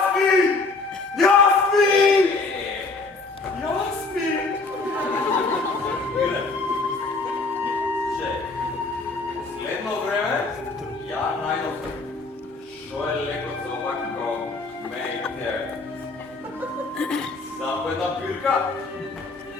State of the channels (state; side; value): quieter; right; 3.7 dB